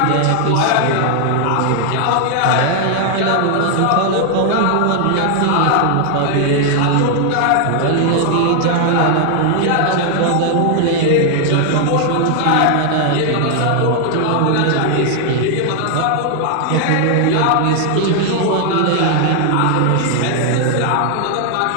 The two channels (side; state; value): both; different; correlation 0.00